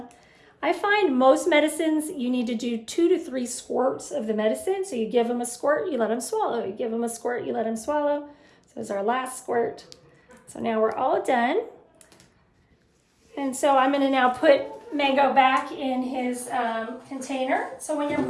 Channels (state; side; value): identical; both; correlation 1.00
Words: I find most medicines, you need to do 2 to 3 squirts of the medicine. So you give them a squirt, you let them swallow. You give them a squirt, you let them swallow. So this is our last squirt. So now we're all done. And so I'm going to now put Mango back in his container. So when you're